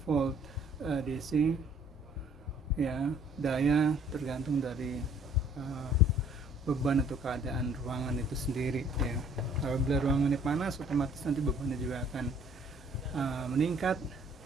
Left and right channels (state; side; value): normal; both; correlation 0.58